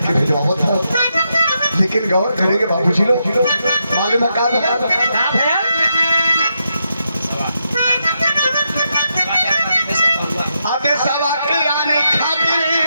भेजवावत है। लेकिन गौर करेंगे बाबूजी लोग मालूम है का आते सवा के आने खातिर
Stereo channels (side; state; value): both; inverted; correlation -0.83